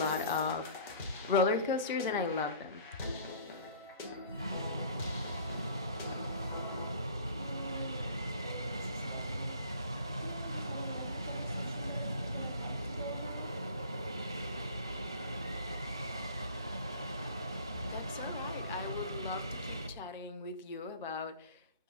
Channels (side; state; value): both; inverted; correlation -0.47